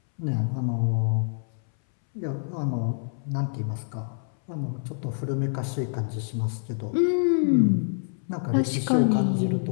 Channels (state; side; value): silent; right; 61 dB below the other